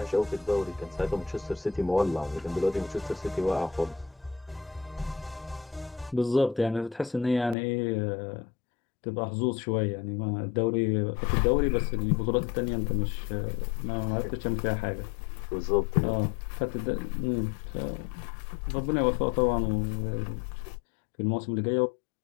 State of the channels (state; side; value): drops out; right; at 7.6 s